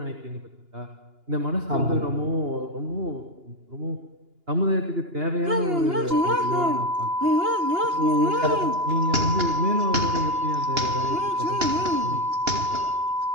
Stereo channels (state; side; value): late; left; 2.9 ms